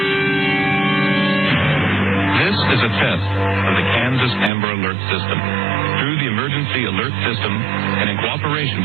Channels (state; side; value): drops out; left; at 4.5 s